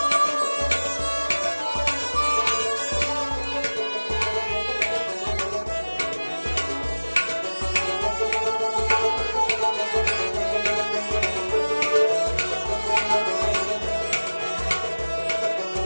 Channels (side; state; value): both; inverted; correlation -1.00